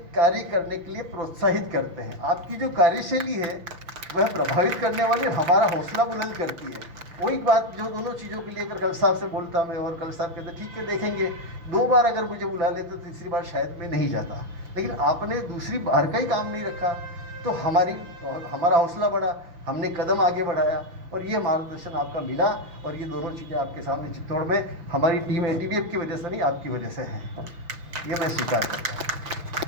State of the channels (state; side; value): late; left; 5.9 ms